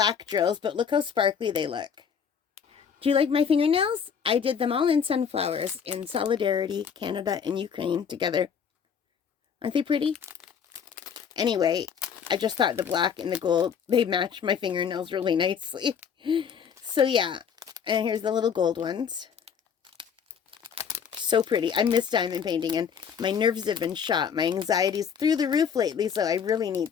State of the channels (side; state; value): right; quieter; 7.2 dB